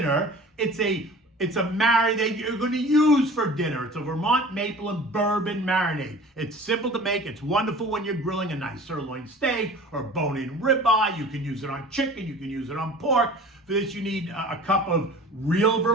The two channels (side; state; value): both; normal; correlation 0.42